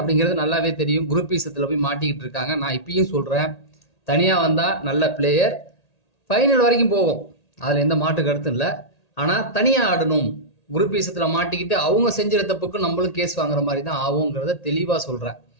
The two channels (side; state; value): right; late; 1.8 ms